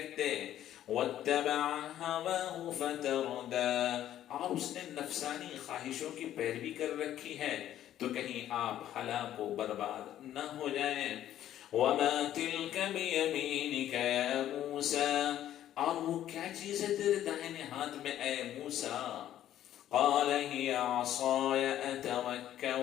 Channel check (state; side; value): quieter; right; 11.9 dB